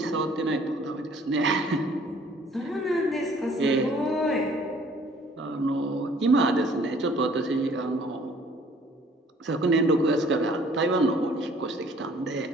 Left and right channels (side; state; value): both; normal; correlation 0.56